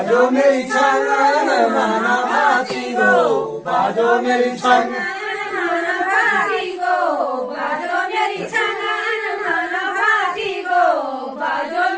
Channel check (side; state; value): both; identical; correlation 1.00